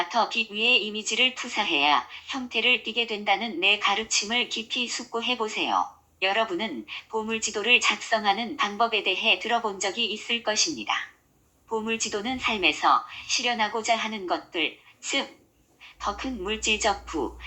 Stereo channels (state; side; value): identical; both; correlation 1.00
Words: 빛 위에 이미지를 투사해야 형태를 띠게 된다는 내 가르침을 깊이 숙고해 보세요. 여러분은 보물지도를 작성하는 방법에 대해 들어본 적이 있을 것입니다. 보물지도는 삶에서 실현하고자 하는 것들, 즉, 더 큰 물질적 부,